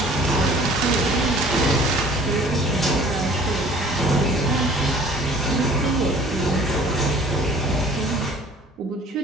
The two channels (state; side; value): normal; both; correlation 0.50